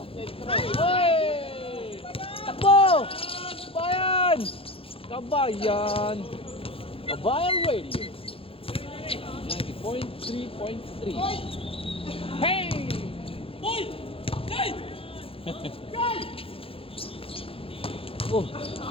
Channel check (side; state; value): right; late; 0.27 ms